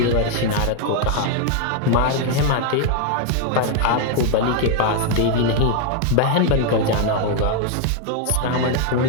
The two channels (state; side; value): different; both; correlation 0.00